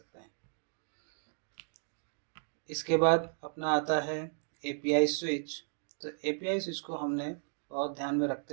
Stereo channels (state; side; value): silent; left; digital silence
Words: हैं। इसके बाद अपना आता है एपीआई स्विच। तो एपीआई स्विच को हमने बहुत ध्यान में